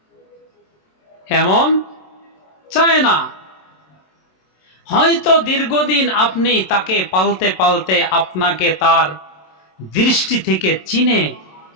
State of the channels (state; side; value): late; right; 27 ms